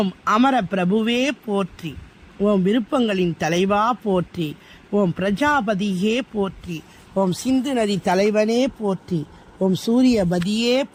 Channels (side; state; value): both; identical; correlation 1.00